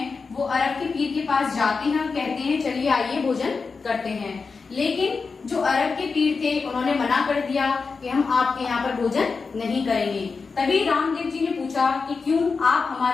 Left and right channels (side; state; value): right; quieter; 4.7 dB